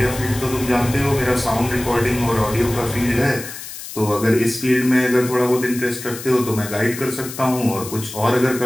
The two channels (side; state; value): left; noise; hiss, 11 dB below the sound